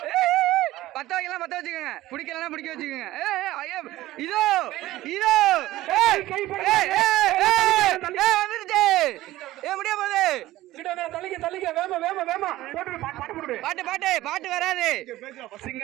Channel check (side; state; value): left; quieter; 16.2 dB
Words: பத்த வைக்கலாம் பத்த வச்சுக்கோங்க. பிடிக்கலாம் பிடிக்க வச்சுக்கோங்க. இதோ இதோ வந்துருச்சு. முடிய போகுது. பாட்டு பாட்டு பாட்டு வராது. சிங்க